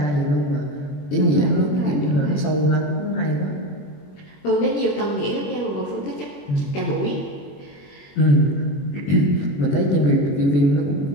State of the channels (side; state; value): right; late; 21 ms